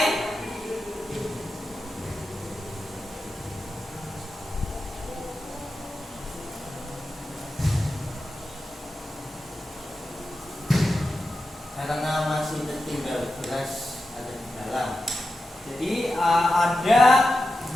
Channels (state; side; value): normal; both; correlation 0.91